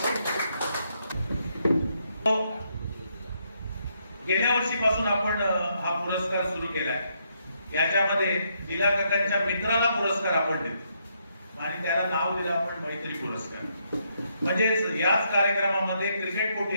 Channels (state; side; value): inverted; both; correlation -0.76